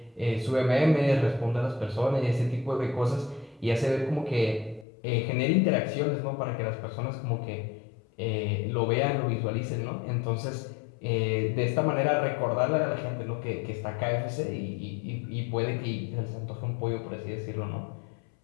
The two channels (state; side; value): drops out; right; at 4.9 s